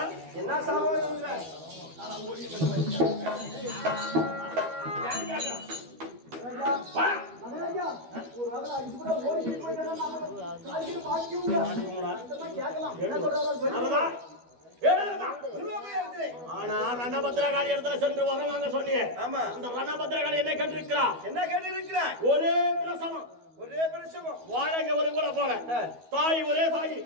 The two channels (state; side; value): late; left; 12 ms